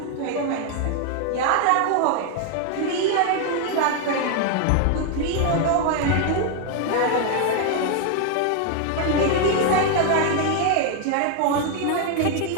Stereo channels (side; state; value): both; different; correlation 0.00